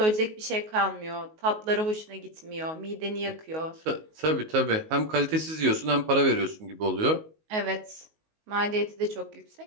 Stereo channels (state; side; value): late; left; 19 ms